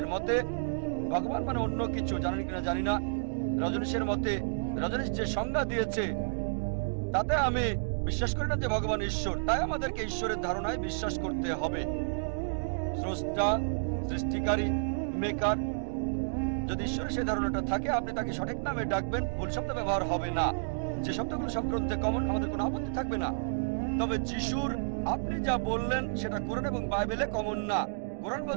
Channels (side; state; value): left; silent; digital silence